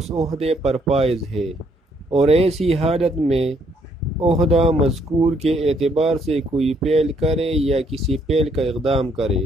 عہدے پر فائز ہے، اور ایسی حالت میں عہدہ مذکور کے اعتبار سے کوئی فعل کرے یا کسی فعل کا اقدام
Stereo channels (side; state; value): both; normal; correlation 0.69